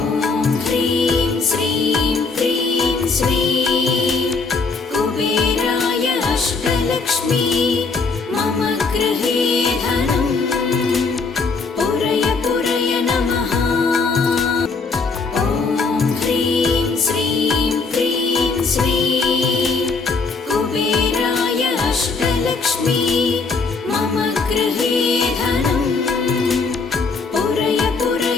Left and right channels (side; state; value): right; quieter; 4.4 dB